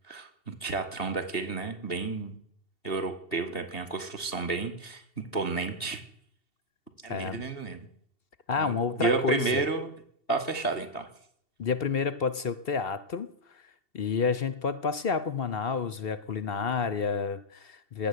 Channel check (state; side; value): late; right; 2.7 ms